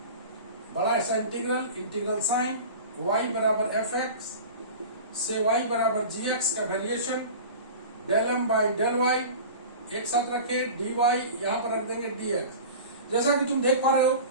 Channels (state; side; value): inverted; both; correlation -0.36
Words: बड़ा ऐसा इंटीग्रल, इंटीग्रल साइन y बराबर एफ एक्स से y बराबर जी एक्स का variation del M by del y, एक साथ रखे डी वाई, यहां पर रख देंगे डी एक्स। जैसा कि तुम देख पा रहे हो,